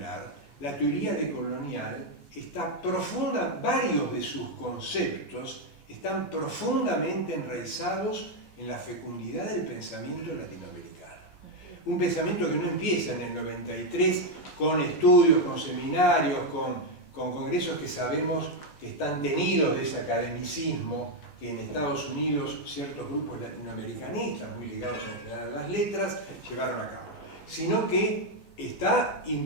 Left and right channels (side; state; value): right; late; 14 ms